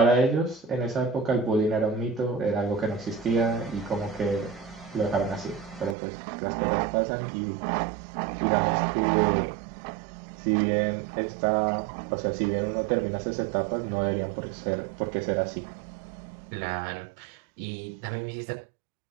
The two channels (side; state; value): left; drops out; at 6.0 s